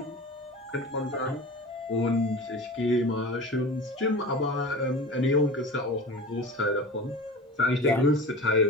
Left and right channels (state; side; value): normal; both; correlation 0.34